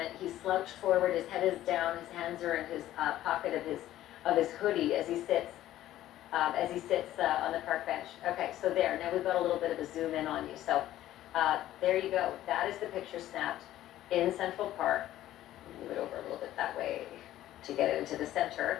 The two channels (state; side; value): quieter; right; 13.7 dB